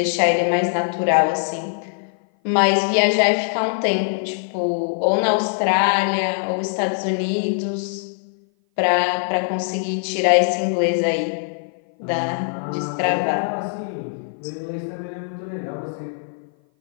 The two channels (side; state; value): right; silent; 57 dB below the other